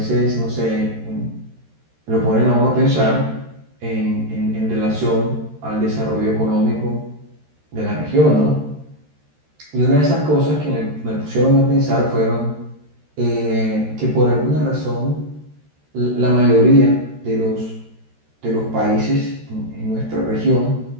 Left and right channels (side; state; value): left; late; 13 ms